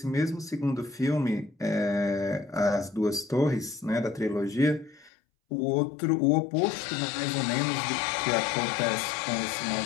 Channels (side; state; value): right; drops out; at 5.1 s